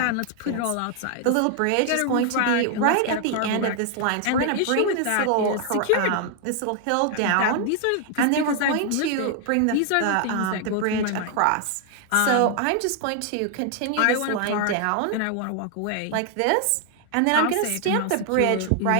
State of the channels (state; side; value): different; both; correlation 0.00